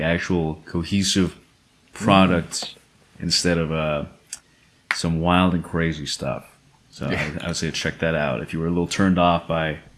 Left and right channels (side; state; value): both; identical; correlation 1.00